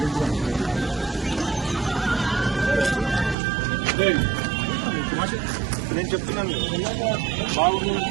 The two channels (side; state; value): left; drops out; at 3.4 s